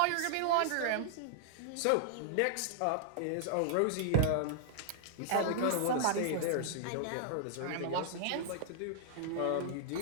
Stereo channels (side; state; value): both; different; correlation -0.01